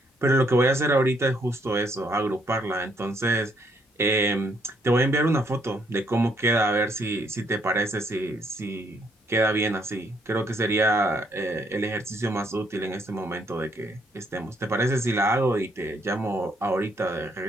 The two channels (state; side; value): normal; both; correlation 0.71